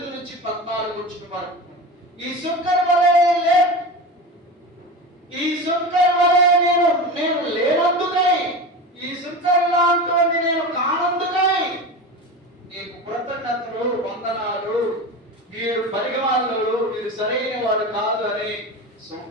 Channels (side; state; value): both; normal; correlation 0.27